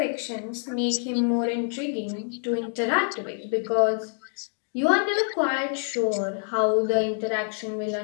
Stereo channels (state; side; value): silent; right; 55 dB below the other